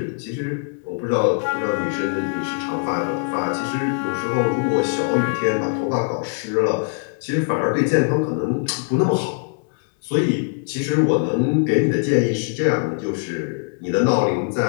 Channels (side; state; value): right; silent; 56 dB below the other